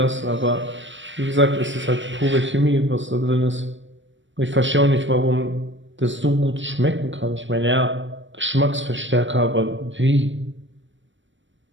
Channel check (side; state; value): left; late; 0.55 ms